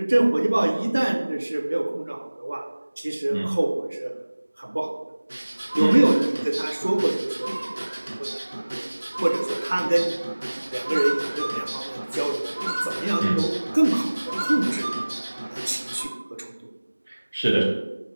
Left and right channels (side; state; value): both; inverted; correlation -1.00